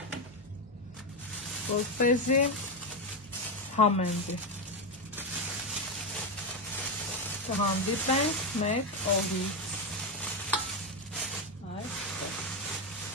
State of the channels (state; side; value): noise; right; hum, 27 dB below the sound